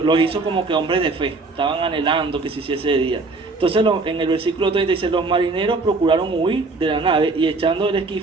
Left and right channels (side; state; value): left; quieter; 3.6 dB